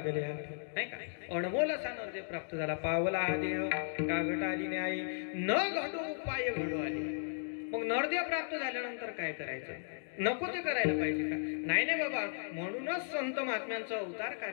नाही का. अनमोल असा नरदेह प्राप्त झाला. पावला हा देह कागट आली न्यायी, न घडो उपाय घडो आले. मग नरदेह प्राप्त झाल्यानंतर काय करायचं. नको ते करायला पाहिजे का. नाही नाही बाबा, म्हणूनच संत महात्म्यांचं अवतार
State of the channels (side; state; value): right; silent; digital silence